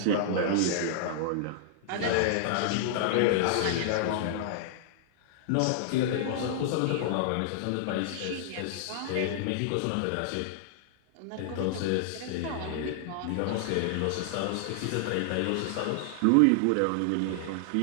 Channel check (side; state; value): both; different; correlation -0.01